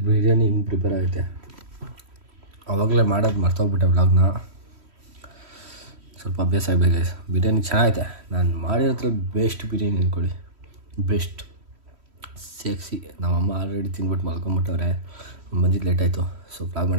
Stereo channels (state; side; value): late; left; 3.1 ms